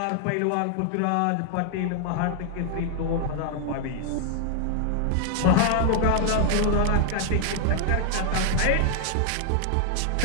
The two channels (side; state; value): both; different; correlation 0.00